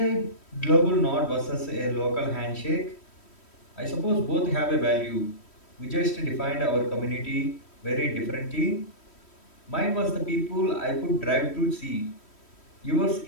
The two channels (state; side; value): late; right; 3.1 ms